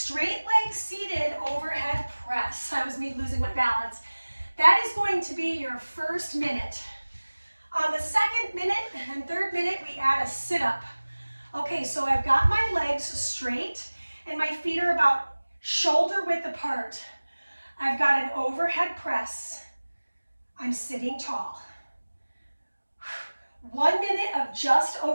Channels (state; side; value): inverted; both; correlation -1.00